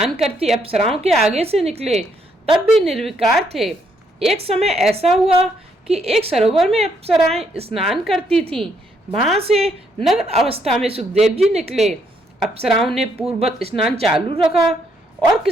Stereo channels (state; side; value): normal; both; correlation 0.73